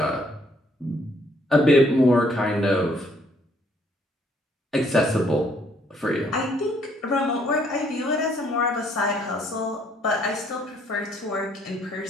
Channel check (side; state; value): both; normal; correlation 0.66